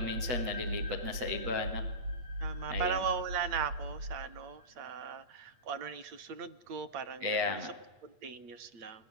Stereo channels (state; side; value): late; left; 8.5 ms